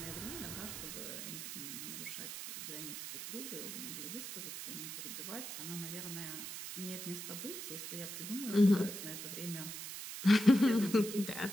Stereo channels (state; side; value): noise; right; hiss, 7 dB below the sound